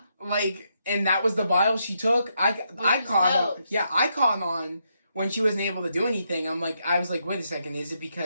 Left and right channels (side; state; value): both; inverted; correlation -0.79